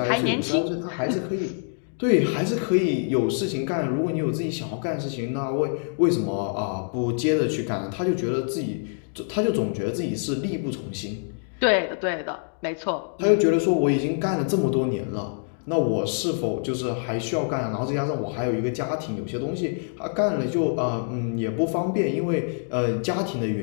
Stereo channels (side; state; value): right; silent; 61 dB below the other